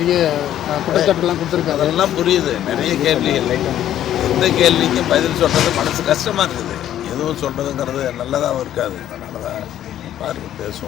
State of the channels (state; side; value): quieter; right; 11.6 dB